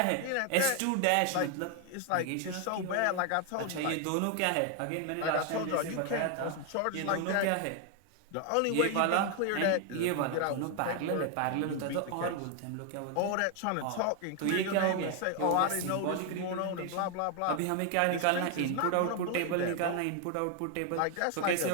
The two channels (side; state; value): both; different; correlation 0.01